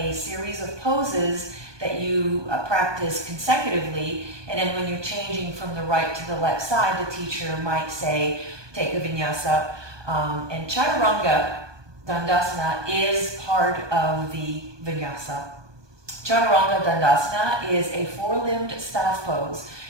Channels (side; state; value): left; late; 1.2 ms